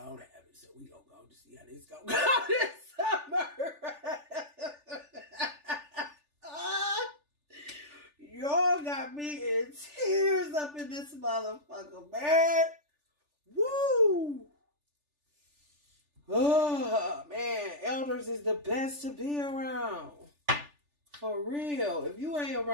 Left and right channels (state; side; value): late; left; 3.4 ms